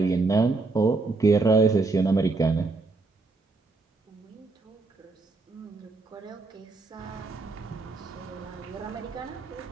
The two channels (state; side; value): quieter; left; 3.7 dB